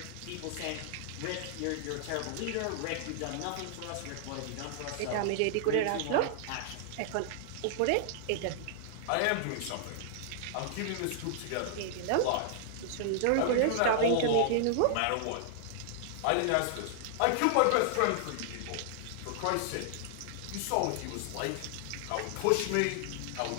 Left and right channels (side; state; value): both; different; correlation -0.01